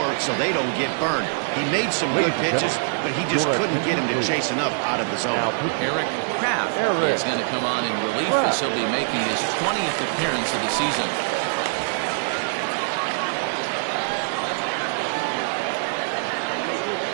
so they don't get burned. He made some good pitches, but he just couldn't get him to chase enough out of the zone. Eric Kraft is going to come on in relief as he'll be making his 20th appearance of the season.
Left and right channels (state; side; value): silent; left; digital silence